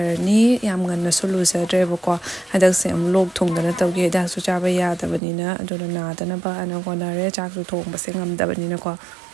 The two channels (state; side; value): drops out; left; at 5.2 s